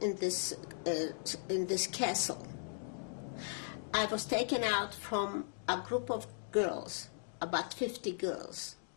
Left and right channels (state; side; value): silent; right; digital silence